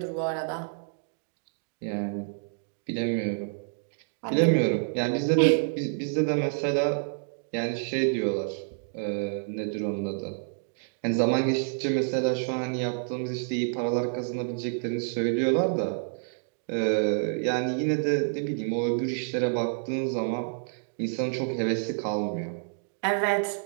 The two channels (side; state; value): left; silent; digital silence